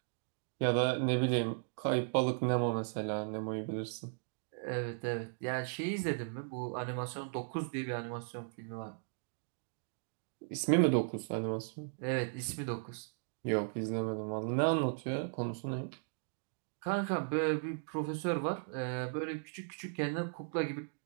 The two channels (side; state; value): left; silent; digital silence